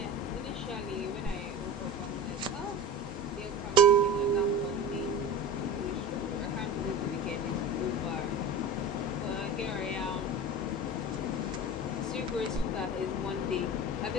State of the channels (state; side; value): normal; both; correlation 0.31